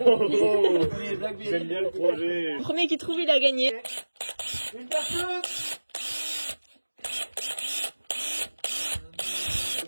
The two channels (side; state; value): both; inverted; correlation -1.00